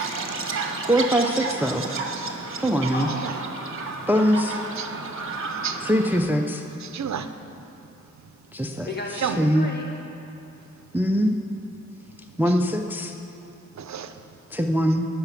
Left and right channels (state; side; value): normal; both; correlation 0.70